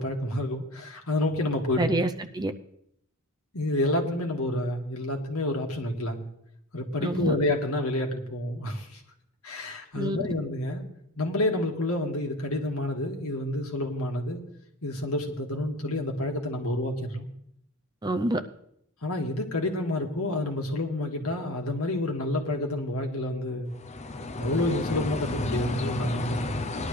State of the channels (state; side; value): normal; both; correlation 0.35